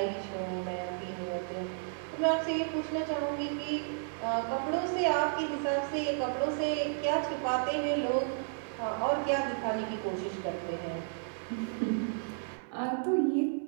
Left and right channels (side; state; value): left; silent; digital silence